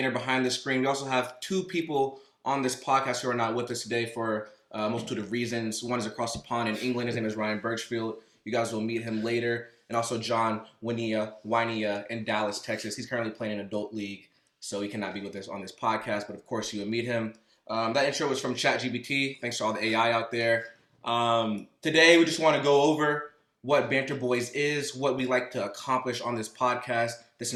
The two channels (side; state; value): both; identical; correlation 1.00